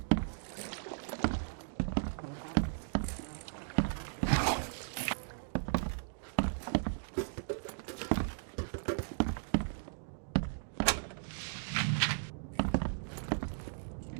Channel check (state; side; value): silent; left; digital silence